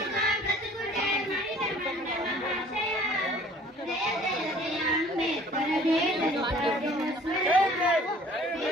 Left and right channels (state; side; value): normal; both; correlation 0.52